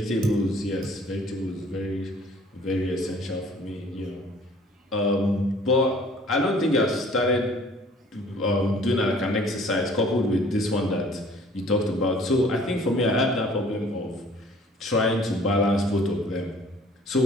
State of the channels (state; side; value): normal; both; correlation 0.53